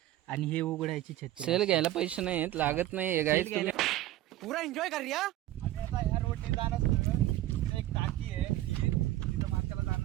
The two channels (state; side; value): quieter; left; 14.7 dB